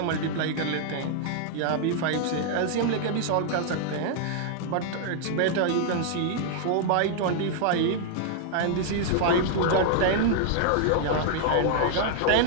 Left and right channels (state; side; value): different; both; correlation 0.00